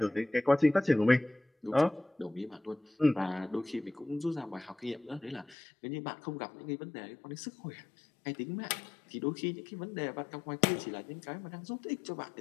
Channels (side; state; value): right; drops out; at 5.6 s